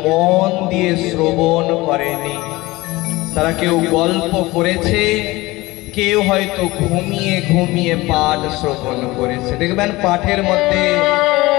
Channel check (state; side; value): quieter; right; 20.5 dB